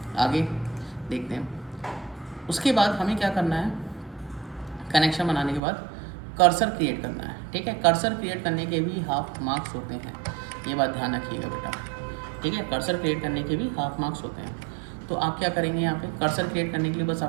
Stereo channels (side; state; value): left; drops out; at 5.6 s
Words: आगे देखते हैं। उसके बाद हमें क्या करना है, कनेक्शन बनाने के बाद कर्सर क्रिएट करना है, ठीक है। कर्सर क्रिएट करने के भी हाफ मार्क्स होते हैं, ये बात ध्यान रखिएगा बेटा, ठीक है। कर्सर क्रिएट करने के भी हाफ मार्क्स होते हैं। तो आप क्या करेंगे, यहाँ पे कर्सर क्रिएट करने के लिए बस